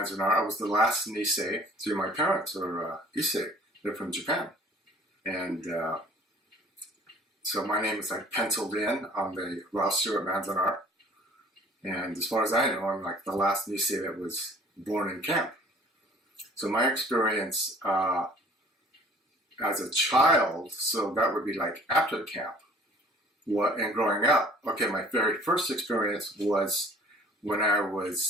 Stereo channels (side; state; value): both; normal; correlation 0.52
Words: I was the last Nisei. So my parents are Issei. They're from Japan. And so my name is like penciled in on the roster at Manzanar. And as far as I know, I'm like the last Nisei that was born in camp. So my experience as a child, so that would be like after camp, and growing up. Okay, my very first experience was when I